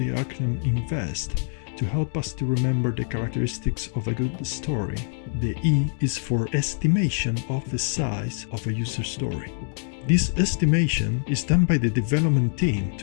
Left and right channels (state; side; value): silent; right; 62 dB below the other